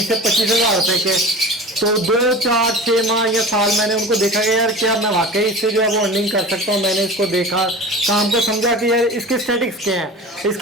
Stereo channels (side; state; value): both; normal; correlation 0.35